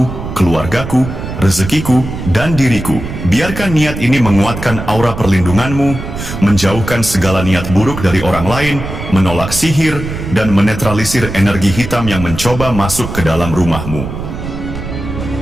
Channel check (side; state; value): right; noise; rumble, 8 dB below the sound